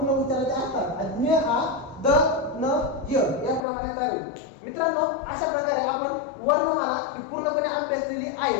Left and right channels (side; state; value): right; drops out; at 3.7 s